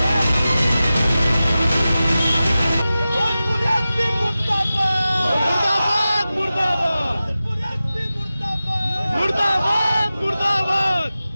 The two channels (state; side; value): inverted; both; correlation -0.95